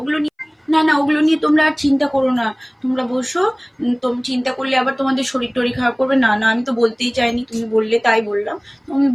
ওগুলো নিয়ে, না না, ওগুলো নিয়ে তোমরা আর চিন্তা করো না। তোমরা বসো। তুমি চিন্তা করলে আবার তোমাদের শরীর টরীর খারাপ করবে। না না, আমি তো বলতেই চাইনি, তুমি বললে তাই বললাম। তুমি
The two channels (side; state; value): both; identical; correlation 1.00